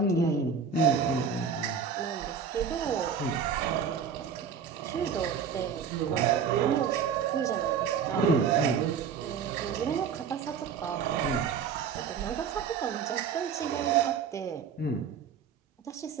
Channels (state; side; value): quieter; left; 6.6 dB